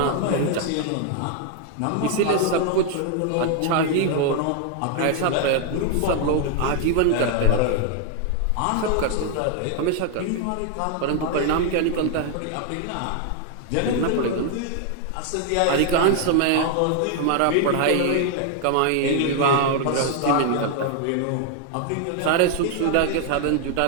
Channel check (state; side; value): different; both; correlation 0.00